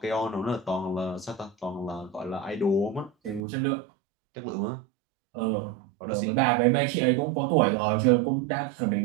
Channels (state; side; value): drops out; left; at 3.4 s